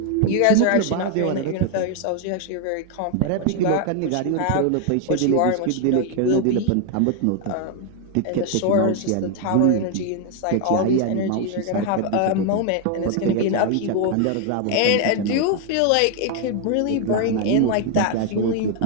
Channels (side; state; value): both; different; correlation 0.01